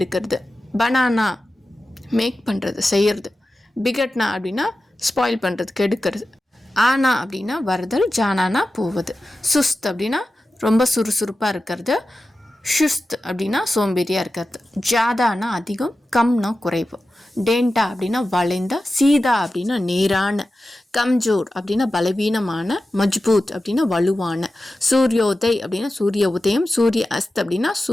பனானா மேக் பண்ணுறது செய்கிறது பிகட்னா அப்படின்னா ஸ்பாயில் பண்ணுறது கெடுக்கிறது ஆனா அப்படின்னா வருதல் ஜானானா போவது சுஸ்த் அப்படின்னா ரொம்ப சுறுசுறுப்பாக இருக்கிறது ஷுஸ்த் அப்படின்னா சோம்பேறியாக இருக்கிறது ஜாதானா அதிகம் கம்னா குறைவு டேண்டா அப்படின்னா வளைந்த சீதா அப்படின்னா நேரான கம்ஜோர் அப்படின்னா பலவீனமான மஜ்பூத் அப்படின்னா வலுவான சூரியோதய் அப்படின்னா சூரிய உதயம் சூரிய அஸ்த் அப்படின்னா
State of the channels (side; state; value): both; normal; correlation 0.93